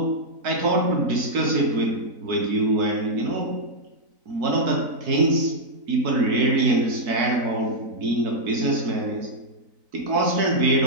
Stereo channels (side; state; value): left; late; 4.0 ms